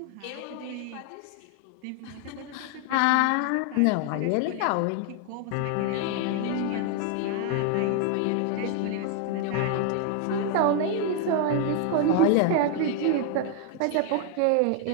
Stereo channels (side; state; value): both; different; correlation 0.00